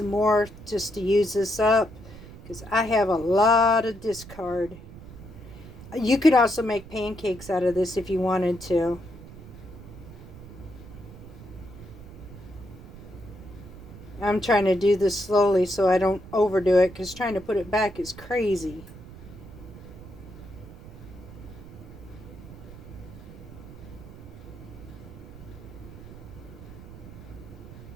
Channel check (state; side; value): noise; right; rumble, 16 dB below the sound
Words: more just to use this up, because I have a lot of discard. You could also make pancakes out of this if you wanted to. I'm trying to do this slowly so I don't overdo it, because trying to put it back is crazy.